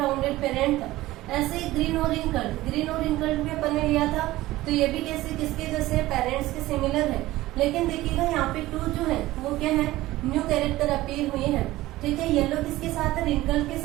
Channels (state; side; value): quieter; left; 17.2 dB